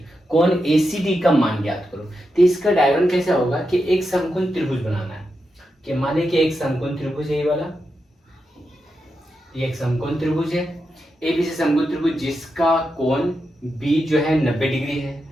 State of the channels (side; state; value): both; normal; correlation 0.87